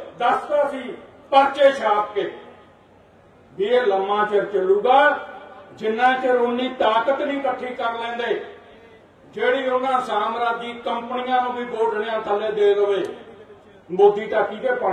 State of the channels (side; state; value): both; identical; correlation 1.00